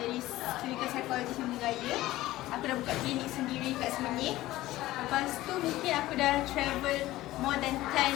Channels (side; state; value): right; quieter; 16.5 dB